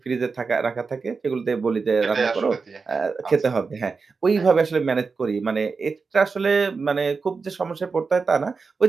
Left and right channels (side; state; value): left; quieter; 4.7 dB